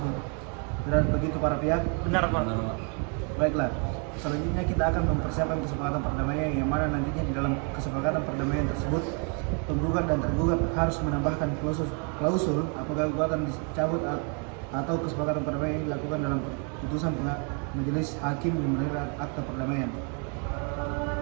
Benar begitu para pihak? Benar, Pak. Benar, Pak. Baiklah, selanjutnya kita akan mempersiapkan kesepakatan perdamaian yang mana nantinya di dalam kesepakatan perdamaian tersebut penggugat dan tergugat harus menambahkan klausul apabila gugatan dicabut atau kesepakatan perdamaian dilakukan dalam putusan majelis hakim yang menerima akta perdamaian.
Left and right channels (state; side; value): quieter; left; 38.3 dB